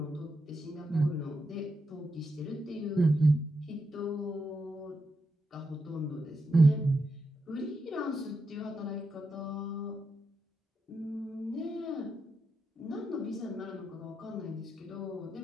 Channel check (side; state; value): both; normal; correlation 0.85